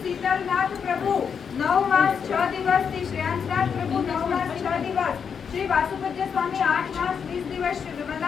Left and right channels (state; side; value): quieter; right; 6.8 dB